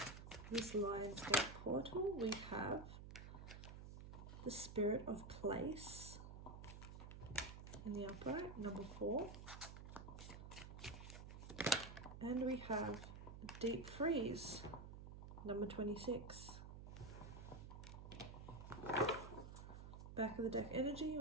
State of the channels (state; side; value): noise; right; hum, 10 dB below the sound